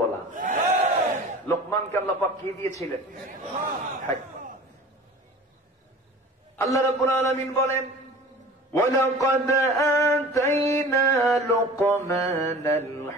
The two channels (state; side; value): normal; both; correlation 0.41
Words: বলা। লোকমানকে আল্লাহ পাক কি দিয়েছিলেন? হেকমত। আল্লাহ রাব্বুল আলামিন বলেন, وَلَقَدْ آتَيْنَا لُقْمَانَ